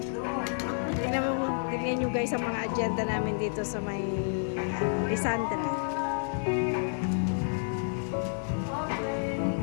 Tingnan nyo guys ang mga agenda namin dito sa may Lisandra.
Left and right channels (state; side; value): silent; right; 58 dB below the other